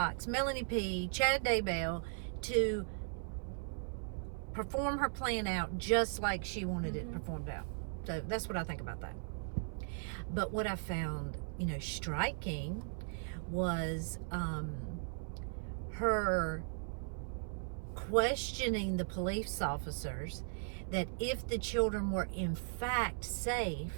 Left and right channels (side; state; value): left; silent; 53 dB below the other